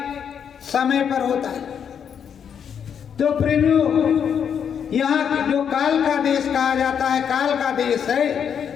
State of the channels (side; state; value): right; quieter; 7.8 dB